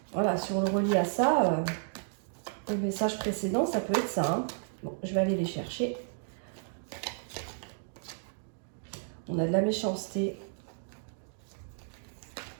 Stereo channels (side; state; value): left; silent; digital silence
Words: Voilà, si on le relie à ça, au message précédent, ça peut être ça. Hein. Bon, je vais aller les chercher. On a de la méchanceté.